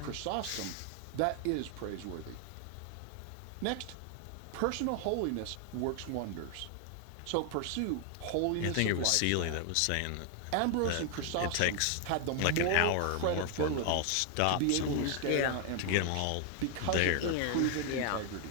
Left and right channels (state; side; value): different; both; correlation 0.00